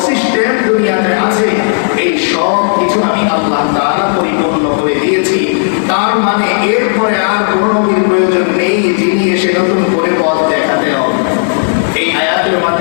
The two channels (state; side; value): silent; right; digital silence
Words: সিস্টেম দুনিয়াতে আছে এই সব কিছু আমি আল্লাহ তাআলা পরিপূর্ণ করে দিয়েছি। তার মানে এরপরে আর কোন নবীর প্রয়োজন নেই যিনি এসে নতুন করে পথ দেখাতে হবে। এই আয়াতের